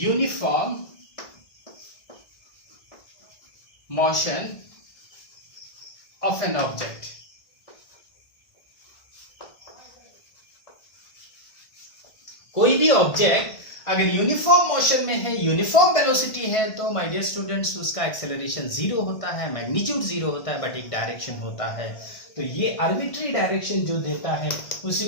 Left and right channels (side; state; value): right; late; 1.5 ms